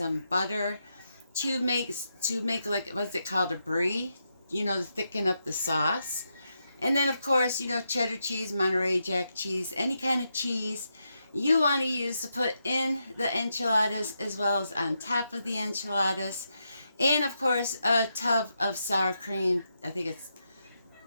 butter to make like, what's it called, a brie, to thicken up the sauce. And then of course, cheddar cheese, Monterey Jack cheese, any kind of cheese you want to use to put in the enchiladas as well as on top of the enchiladas. And of course, a tub of sour cream. I think it's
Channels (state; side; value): inverted; both; correlation -0.84